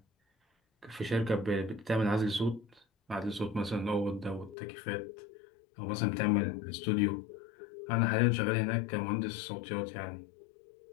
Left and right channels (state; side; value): drops out; right; at 4.5 s